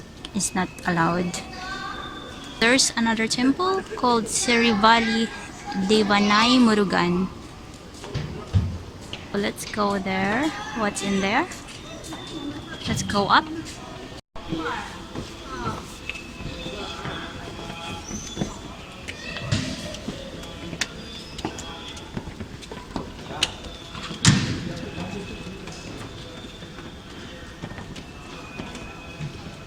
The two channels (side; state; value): both; identical; correlation 1.00